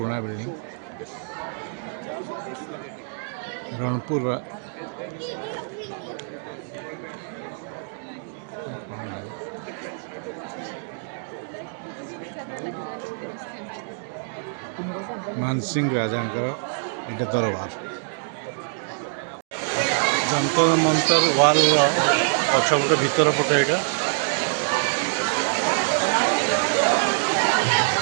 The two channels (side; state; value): left; silent; 62 dB below the other